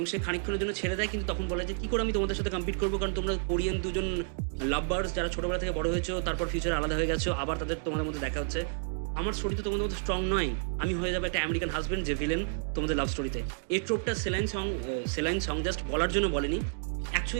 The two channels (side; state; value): left; silent; 57 dB below the other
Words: সে খানিকক্ষণের জন্য ছেড়ে দেয়, কিন্তু তখন বলে যে কী করে আমি তোমাদের সাথে কম্পিট করবো, কারণ তোমরা কোরিয়ান দুজন লাভবার্স যারা ছোটোবেলা থেকে বড় হয়েছো, তারপর ফিউচারে আলাদা হয়ে গেছো, আবার তোমাদের মধ্যে দেখা হচ্ছে। আমার স্টোরি তো তোমাদের মধ্যে স্ট্রং নয়, আমি হয়ে যাবে একটা আমেরিকান হাজব্যান্ড যে ভিলেন তোমাদের লাভ স্টোরিতে। এই ট্রোপটা সেলাইন সং জাস্ট বলার জন্য বলেনি,